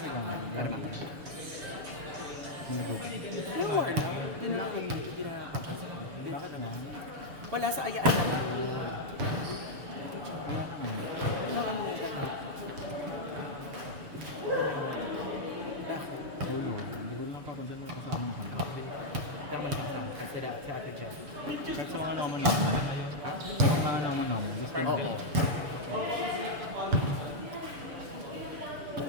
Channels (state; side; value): late; left; 6.8 ms